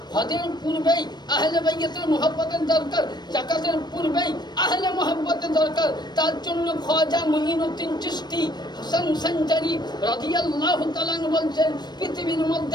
হজের পূর্বেই আহলে বাইয়াতের মহব্বতের দরকার, যাকাতের পূর্বেই আহলে মহব্বতের দরকার। তার জন্য খাজা মুঈনুদ্দিন চিশতি হাসান সঞ্জারি রাদিয়াল্লাহু তাআলা বলছেন, পৃথিবীর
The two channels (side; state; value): right; late; 0.21 ms